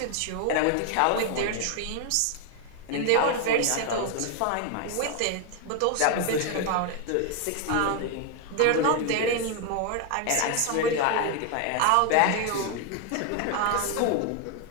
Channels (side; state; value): both; different; correlation 0.01